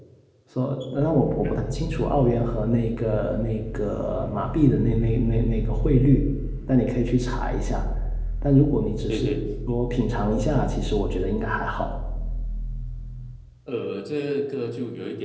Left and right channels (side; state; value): both; identical; correlation 1.00